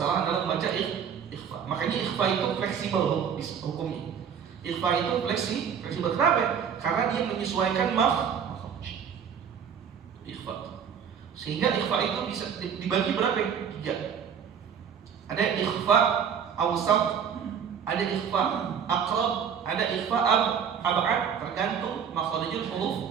dalam membaca ikhfa. Makanya ikhfa itu fleksibel hukumnya. Ikhfa itu fleksibel. Kenapa? Karena dia menyesuaikan makhraj. Ikhfa. Sehingga ikhfa itu bisa dibagi berapa? 3. Ada ikhfa awsat, ada ikhfa aqrab, ada ikhfa ab'ad, tergantung makhrijul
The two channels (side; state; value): left; quieter; 7.6 dB